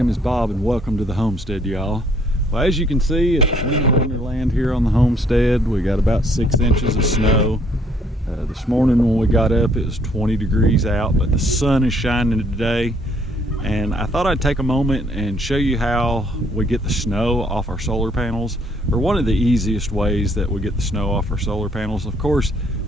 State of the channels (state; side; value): normal; both; correlation 0.65